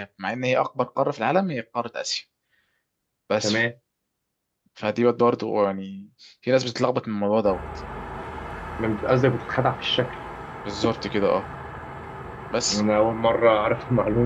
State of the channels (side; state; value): both; identical; correlation 1.00